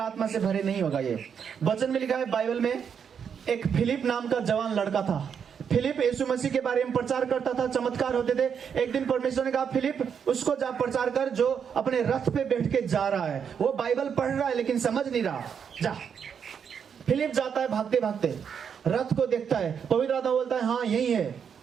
आत्मा से भरे नहीं होगा। ये वचन में लिखा है बाइबल में, एक फिलिप नाम का जवान लड़का था। फिलिप यीशु मसीह के बारे में प्रचार करता था, चमत्कार होते थे। एक दिन परमेश्वर ने कहा फिलिप उसको जा प्रचार कर जो अपने रथ पे बैठ के जा रहा है, वो बाइबल पढ़ रहा है लेकिन समझ नहीं रहा। जा। फिलिप जाता है भागते भागते, रथ को देखता है, पवित्र आत्मा बोलता है हाँ यही है,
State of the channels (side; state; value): left; quieter; 7.3 dB